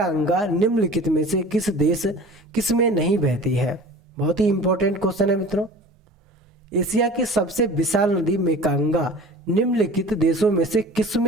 निम्नलिखित में से किस में नहीं बहती है? बहुत ही इंपॉर्टेंट क्वेश्चन है मित्रों, एशिया की सबसे विशाल नदी मेकांगा निम्नलिखित देशों में से किस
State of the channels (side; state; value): both; normal; correlation 0.42